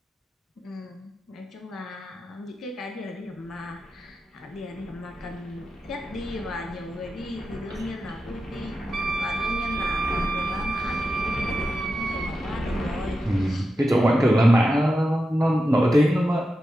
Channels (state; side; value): normal; both; correlation 0.90